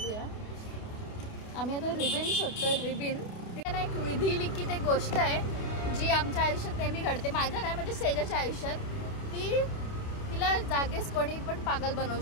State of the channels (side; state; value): right; late; 28 ms